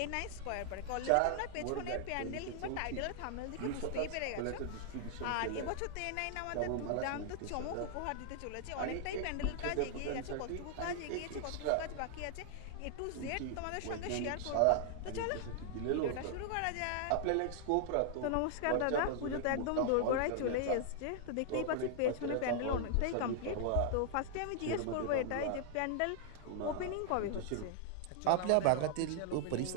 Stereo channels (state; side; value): different; both; correlation 0.00